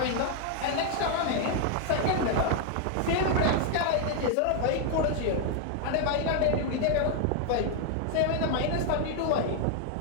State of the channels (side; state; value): both; different; correlation 0.00